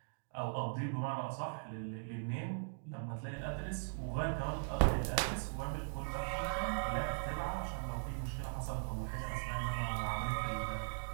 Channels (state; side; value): silent; left; digital silence